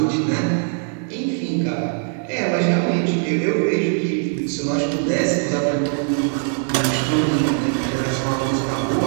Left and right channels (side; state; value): left; silent; 56 dB below the other